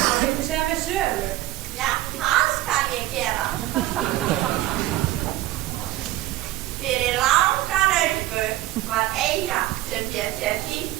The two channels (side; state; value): left; quieter; 15.9 dB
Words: Já, það skal ég gera. Fyrir langa löngu var eyja sem hét